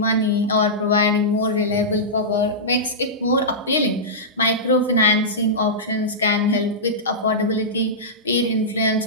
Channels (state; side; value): normal; both; correlation -0.14